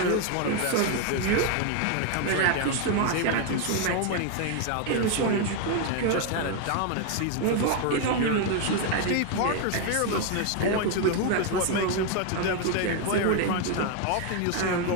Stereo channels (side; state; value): both; different; correlation 0.01